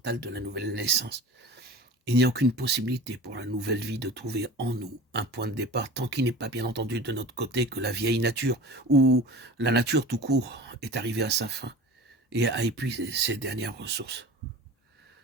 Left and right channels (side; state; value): both; normal; correlation 0.37